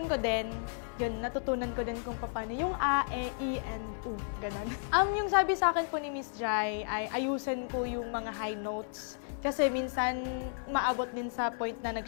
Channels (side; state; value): right; silent; 56 dB below the other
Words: ko din. Yun, natutunan ko din kung paano yung A, E, I, and U, ganun. Yung sabi sa akin po ni Miss Jai ay ayusin ko yung mga high notes. Kasi minsan maabot din sa point na